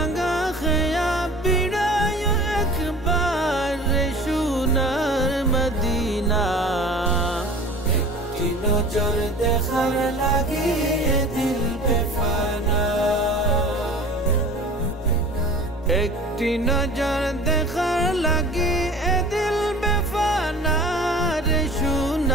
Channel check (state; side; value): normal; both; correlation 0.43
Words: খেয়া বিড়ায় একবার সোনার মদিনা। একটি নজর দেখার লাগি দিল বেফানা, একটি নজর দেখার লাগি দিল বেফানা রে